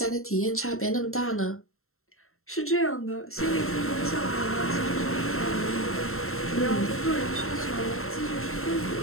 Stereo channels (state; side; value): late; right; 0.62 ms